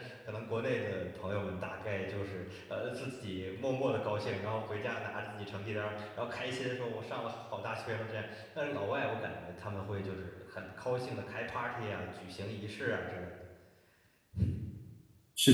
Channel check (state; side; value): identical; both; correlation 1.00